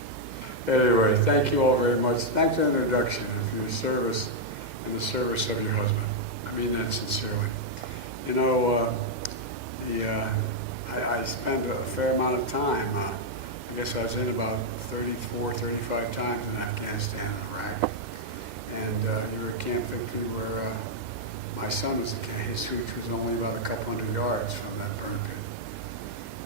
anyway, thank you all very much. Thanks for the introduction and for your service and the service of your husband. I mean that sincerely. You know, I spent a fair amount of time, I guess I was in about 34, 35 times in Afghanistan and Iraq. And you were at Camp Victory where my son was at camp. His hooch was only about a couple hundred yards from that burn pit.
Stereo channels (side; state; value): left; late; 2.0 ms